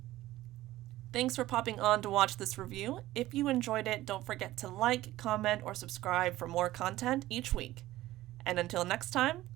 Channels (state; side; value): quieter; left; 16.1 dB